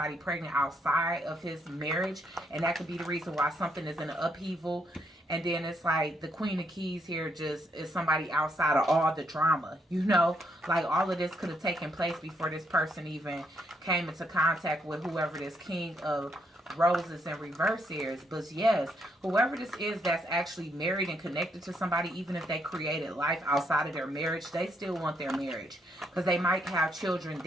pregnant outside of his marriage, and that could be the reason why something is in an upheaval. And then it's like the Queen of Keys here just is somebody outside of all the drama, you know. Like all of this could have taken place before this person even came into contact with whoever this King of Roses in reverse is. But yes, whoever this is that's actually married and connected to somebody, even if they created life outside of their marriage, they still want their marriage, because they might have children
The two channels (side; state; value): both; normal; correlation 0.75